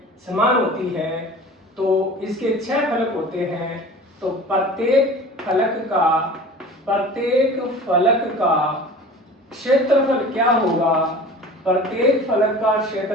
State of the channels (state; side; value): normal; both; correlation 0.40